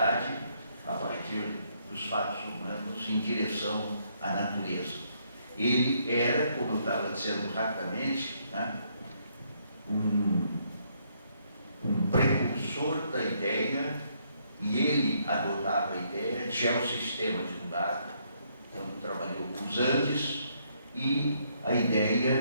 a partir dos fatos humanos em direção à natureza. Ele era, como eu estava dizendo rapidamente, né, um precursor da ideia, e ele adotava a ideia de geossistema divulgado, então trabalhou com os Andes, e a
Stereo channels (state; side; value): inverted; both; correlation -0.72